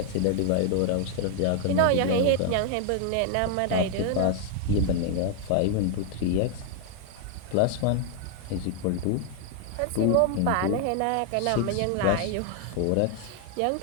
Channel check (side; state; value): both; different; correlation 0.00